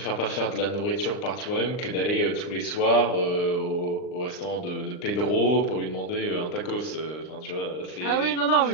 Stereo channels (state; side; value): late; right; 39 ms